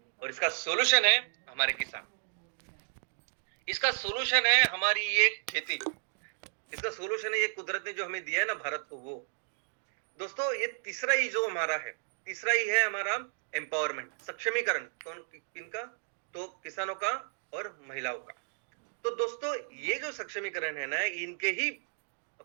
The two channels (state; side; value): silent; left; digital silence